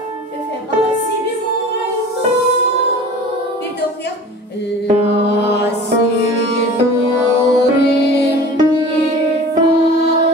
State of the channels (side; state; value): both; normal; correlation 0.40